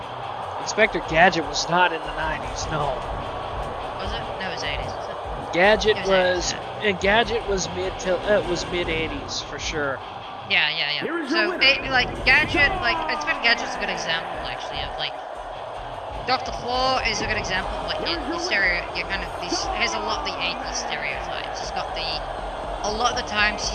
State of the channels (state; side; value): identical; both; correlation 1.00